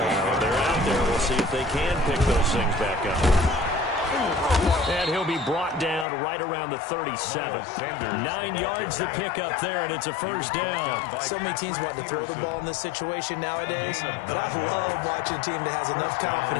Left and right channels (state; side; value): drops out; right; at 6.1 s